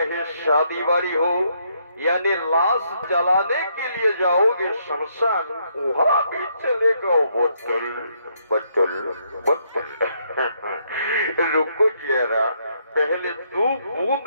शादी बाड़ी हो, यानी लाश जलाने के लिए जाओगे शमशान, वहां भी चलेगा बोतल बोतल बोतल। रुको जरा, पहले 2 बूंद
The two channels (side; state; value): both; inverted; correlation -0.73